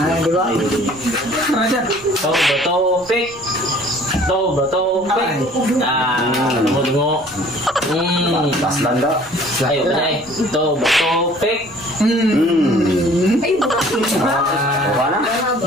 Ay, di ba? Bato, pick. Bato, pick. Tungo. Paslan daw. Ayo, banay. Bato, pick. Wala na?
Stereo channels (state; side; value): noise; right; rumble, 26 dB below the sound